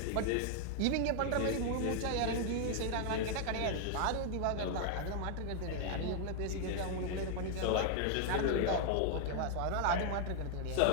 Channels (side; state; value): both; different; correlation 0.00